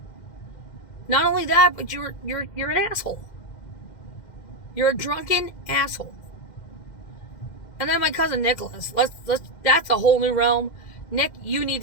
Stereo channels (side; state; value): right; late; 2.1 ms